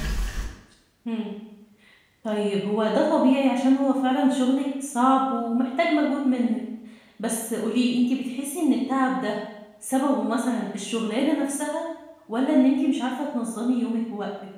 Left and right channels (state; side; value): identical; both; correlation 1.00